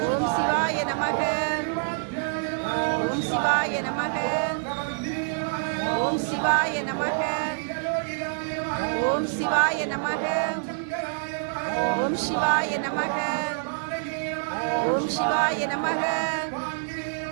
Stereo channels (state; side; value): silent; left; digital silence